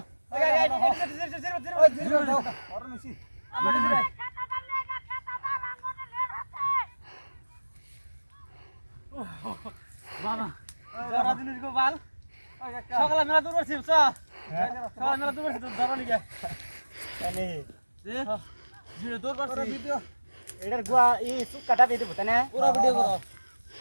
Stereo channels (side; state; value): both; inverted; correlation -1.00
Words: সকালে মেলা দূর করছি সকালে মেলা দূর করছি ধরো লিগে দূর করছি এটার গুয়া ই সুক কাটা দিয়ে দেবো তাই না পুরো ভিডিও করো